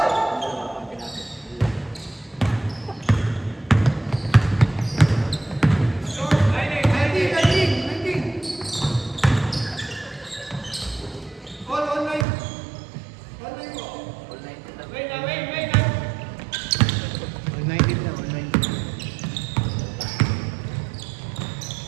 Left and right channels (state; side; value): drops out; left; at 12.2 s